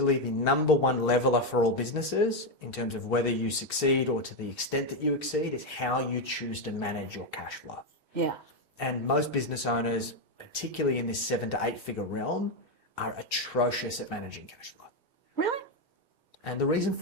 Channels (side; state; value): both; normal; correlation 0.06